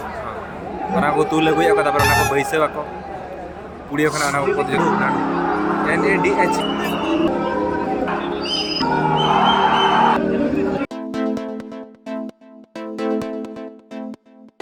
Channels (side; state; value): both; identical; correlation 1.00